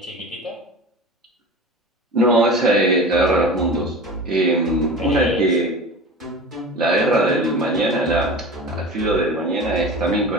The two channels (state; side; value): normal; both; correlation 0.34